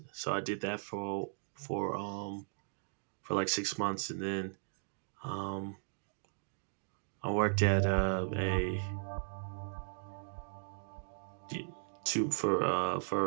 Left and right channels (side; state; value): left; silent; digital silence